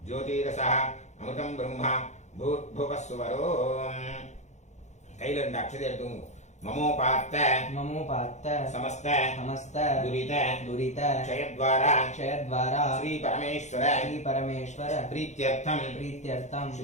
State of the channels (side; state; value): right; late; 0.34 ms